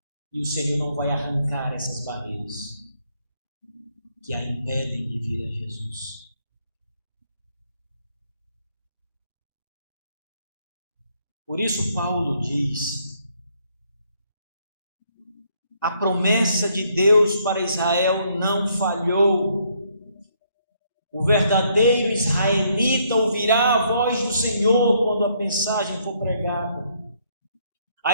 E o Senhor não vai arrancar essas barreiras que a impedem de vir a Jesus. Por isso Paulo diz: a promessa de Deus para Israel não falhou. O verdadeiro israelita ouvirá a voz do Senhor quando a mensagem for pregada.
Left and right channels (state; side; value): inverted; both; correlation -0.70